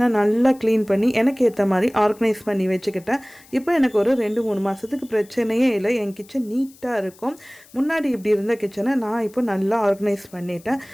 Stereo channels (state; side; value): noise; left; hiss, 26 dB below the sound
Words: நல்லா க்ளீன் பண்ணி எனக்கு ஏற்ற மாதிரி ஆர்கனைஸ் பண்ணி வச்சுக்கிட்டேன். இப்போ எனக்கு ஒரு 2-3 மாதத்துக்கு பிரச்சனையே இல்லை. என் கிச்சன் நீட்டாக இருக்கும். முன்னாடி இப்படி இருந்த கிச்சனை நான் இப்போ நல்லா ஆர்கனைஸ் பண்ணிட்டேன்.